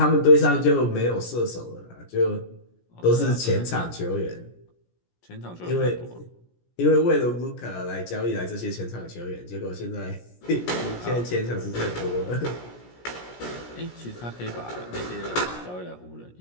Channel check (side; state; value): right; late; 17 ms